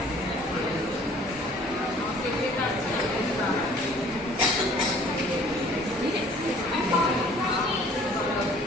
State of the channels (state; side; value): normal; both; correlation 0.54